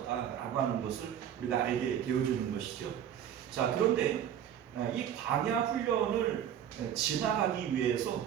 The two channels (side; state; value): left; quieter; 9.7 dB